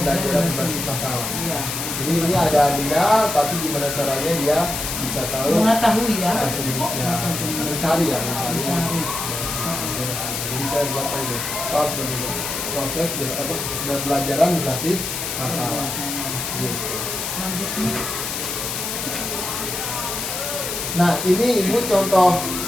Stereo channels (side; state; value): left; noise; hiss, 4 dB below the sound